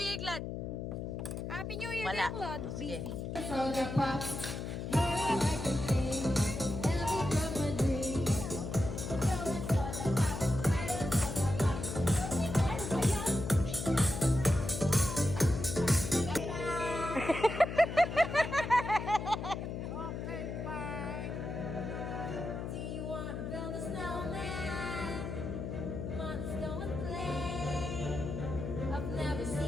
Year, Claude. Happy New Year, Wala. Claude. Sige. Busy. So the pops.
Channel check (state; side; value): noise; left; hum, 5 dB below the sound